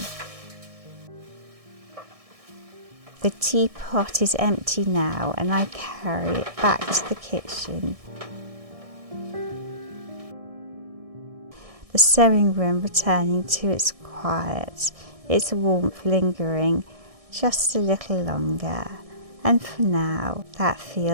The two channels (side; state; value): left; late; 1.6 ms